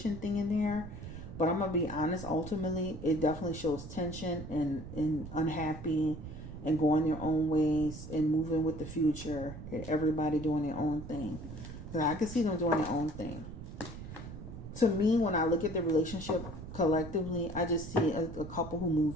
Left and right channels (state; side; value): noise; right; rumble, 11 dB below the sound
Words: thing in there. But I'm going to be honest. Ultimately, it definitely shows tension and unhappy and going their own ways and moving with the future. And everybody doing their own thing. Because I can see them doing their own thing. To me, when I look at the relationship collectively, I just see a couple who